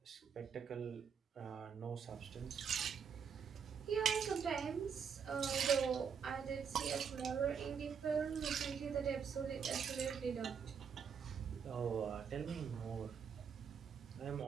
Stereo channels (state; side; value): quieter; left; 6.8 dB